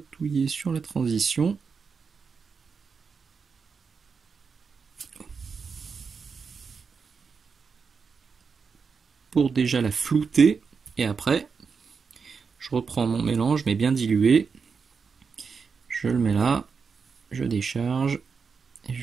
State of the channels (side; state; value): left; quieter; 5.5 dB